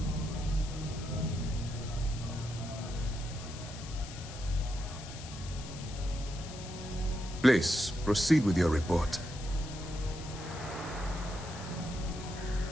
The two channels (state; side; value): noise; left; hiss, 14 dB below the sound